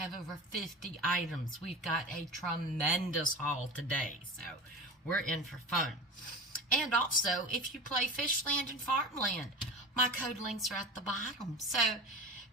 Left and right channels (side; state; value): both; normal; correlation 0.31